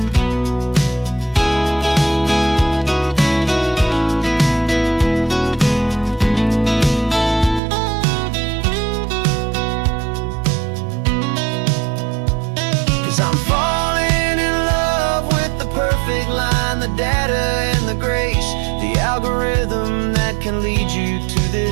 'Cause I'm falling in love with the perfect line, the data and the grace, the algorithm that can lead you to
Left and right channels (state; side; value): drops out; left; at 7.6 s